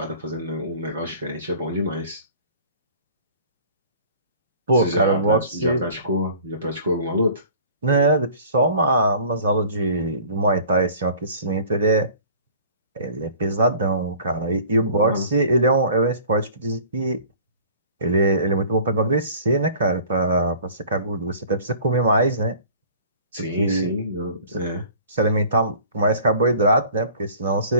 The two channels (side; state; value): both; inverted; correlation -0.48